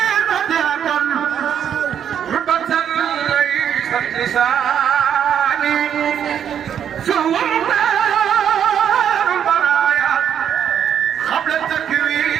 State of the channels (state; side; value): quieter; left; 8.9 dB